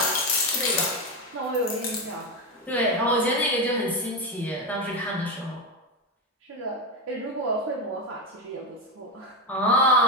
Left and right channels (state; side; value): normal; both; correlation 0.13